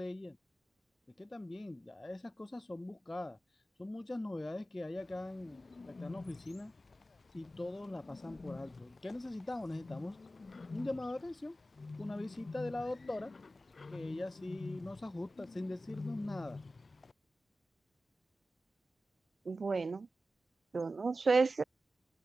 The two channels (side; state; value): both; normal; correlation 0.94